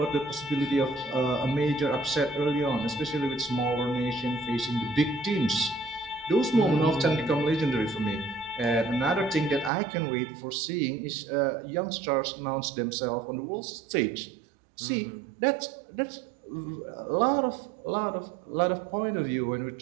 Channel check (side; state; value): left; drops out; at 9.7 s